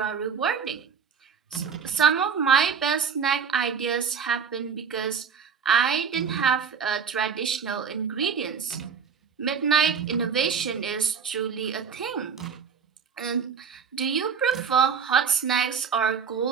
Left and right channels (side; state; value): left; quieter; 6.6 dB